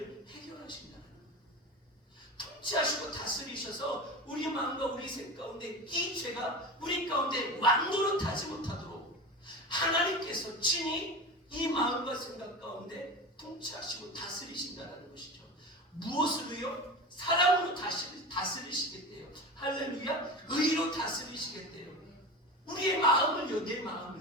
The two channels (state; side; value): normal; both; correlation 0.28